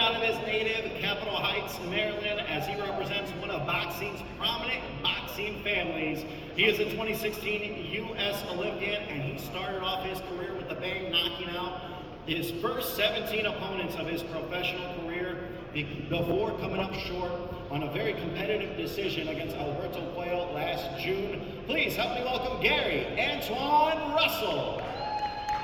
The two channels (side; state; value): both; identical; correlation 1.00